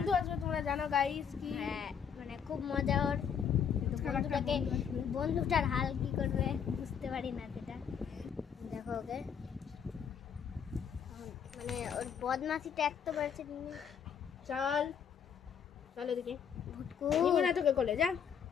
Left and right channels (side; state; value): right; quieter; 7.6 dB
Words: আসবে তোমরা জানো গাইস কি হ্যাঁ মানে খুব মজা ওর কিন্তু বন্ধুটার হাল কি করবে বুঝতে পারি না সেটা দেখো ওকে মানে ওর বদমাশিটা একটু বাড়ছে চল চল এদিকে ভুটকু নিবো না তোকে কোলে যা